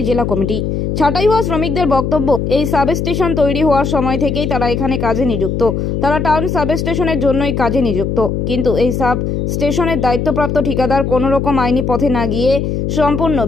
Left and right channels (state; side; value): noise; left; hum, 1 dB below the sound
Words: জেলা কমিটি। ছাঁটাই হওয়া শ্রমিকদের বক্তব্য, এই সাবস্টেশন তৈরি হওয়ার সময় থেকেই তারা এখানে কাজে নিযুক্ত। তারা টাউন সাবস্টেশনের জন্যই কাজে নিযুক্ত, কিন্তু এই সাব স্টেশনের দায়িত্বপ্রাপ্ত ঠিকাদার কোনো রকম আইনি পথে না গিয়ে সম্পূর্ণ